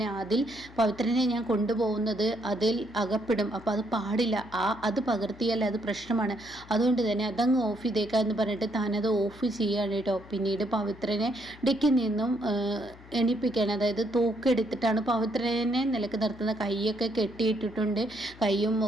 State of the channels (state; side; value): noise; left; hum, 21 dB below the sound